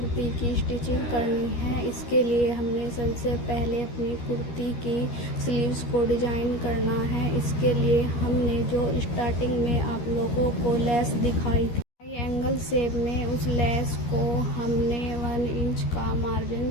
की स्टिचिंग करनी है। इसके लिए हमने सबसे पहले अपनी कुर्ती की स्लीव्स को डिजाइन करना है। इसके लिए हमने जो स्टार्टिंग में आप लोगों को लेस दिखाई थी ट्रायंगल शेप में, उस लेस को हमने 1 इंच का मार्जिन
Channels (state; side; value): late; right; 13 ms